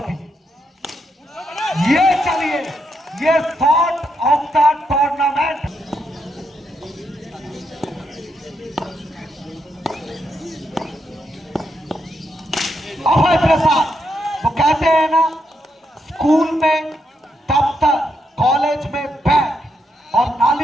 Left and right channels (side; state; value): both; normal; correlation 0.80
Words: ये चलिए ये thought of the tournament. Abhay Prasad, वो कहते हैं ना, स्कूल में दफ्तर, कॉलेज में बैग और